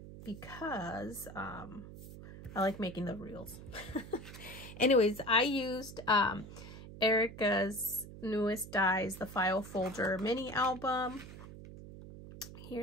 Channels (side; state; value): right; noise; hum, 14 dB below the sound